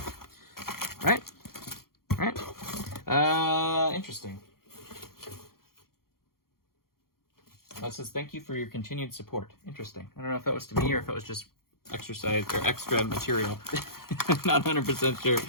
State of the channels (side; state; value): right; late; 0.93 ms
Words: Right? Right? Interesting. That says, thank you for your continued support. Interesting. I don't know if that was to me or if it was just exercise or extra material. Not 100% sure.